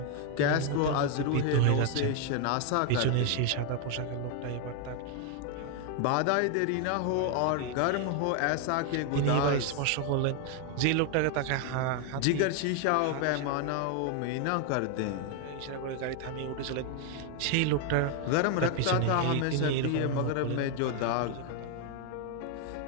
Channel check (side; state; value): both; different; correlation 0.01